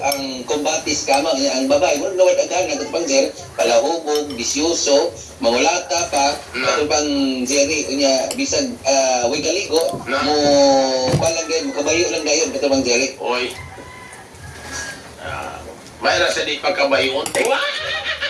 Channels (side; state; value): both; identical; correlation 1.00